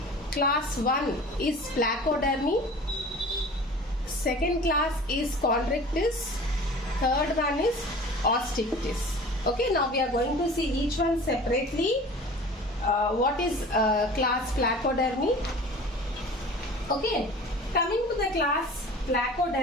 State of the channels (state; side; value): normal; both; correlation 0.41